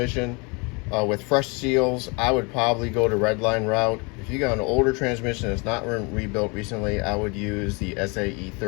with fresh seals, I would probably go to Redline route. If you got an older transmission that's not rebuilt recently, I would use the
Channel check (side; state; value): right; quieter; 29.9 dB